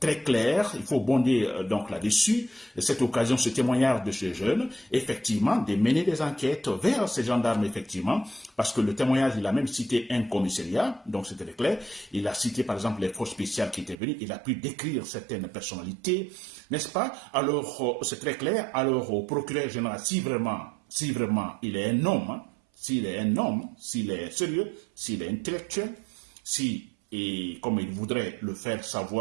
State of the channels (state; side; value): drops out; left; at 14.0 s